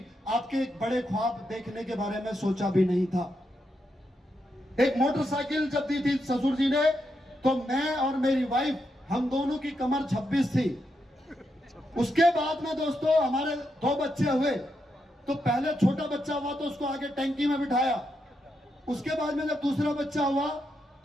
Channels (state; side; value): normal; both; correlation 0.83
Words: आपके बड़े ख्वाब देखने के बारे में सोचा भी नहीं था। एक मोटरसाइकिल जब दी थी ससुर जी ने, तो मैं और मेरी वाइफ, हम दोनों की कमर 26 थी। उसके बाद में दोस्तों हमारे 2 बच्चे हुए, तो पहले छोटा बच्चा हुआ तो उसको आगे टैंकी में बिठाया, उसके बाद में जब दूसरा बच्चा हुआ